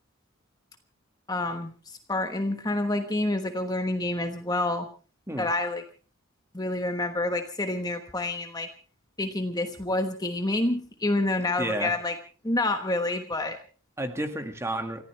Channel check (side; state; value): both; normal; correlation 0.48